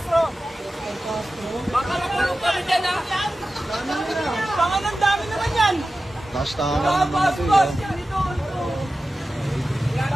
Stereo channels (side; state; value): both; normal; correlation 0.94